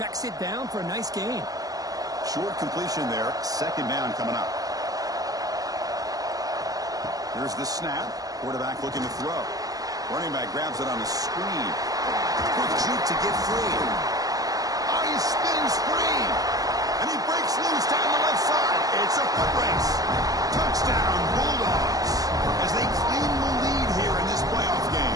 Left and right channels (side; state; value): left; late; 0.17 ms